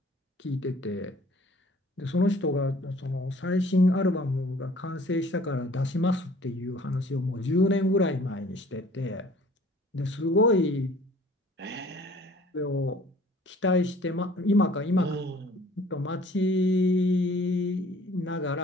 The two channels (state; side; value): normal; both; correlation 0.53